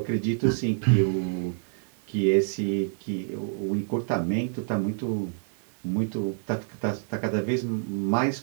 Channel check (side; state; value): left; silent; digital silence